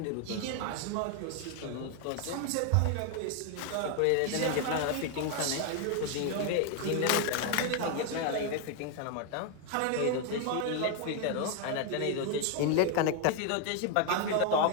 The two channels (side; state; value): both; different; correlation 0.01